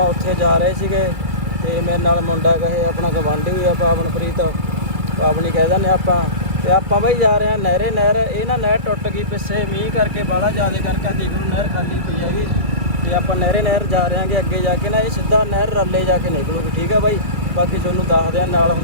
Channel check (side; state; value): left; late; 2.2 ms